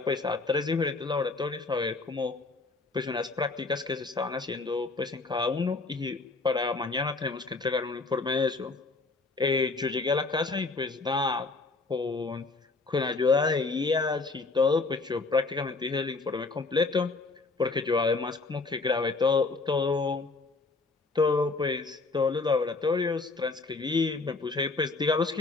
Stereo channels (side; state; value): right; quieter; 3.7 dB